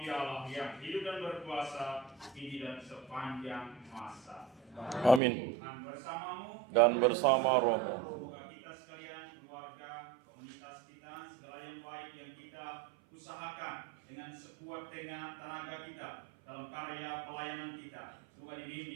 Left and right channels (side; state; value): left; drops out; at 5.2 s